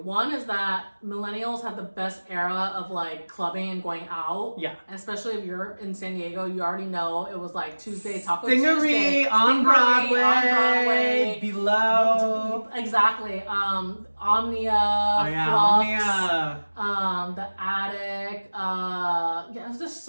One is that millennials had the best era of like clubbing and going out. Yeah. Especially if you're in San Diego, you already know it was like Tuesday, Taco Stingery Tuesday. on Broadway. On Broadway. Below. Exactly. Omnia. Oh yeah, Flux, Omnia. The Attic. Yeah, there's just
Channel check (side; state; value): both; inverted; correlation -1.00